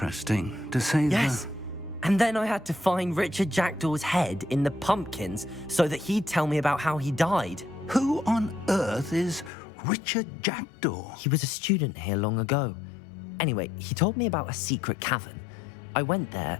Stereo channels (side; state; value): right; drops out; at 9.5 s